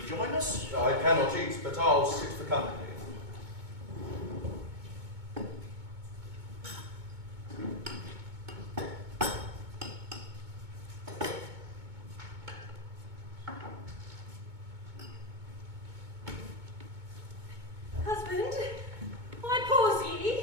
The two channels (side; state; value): left; late; 2.2 ms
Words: join us? I cannot eat, but I'll sit for company. Husband, why pause ye?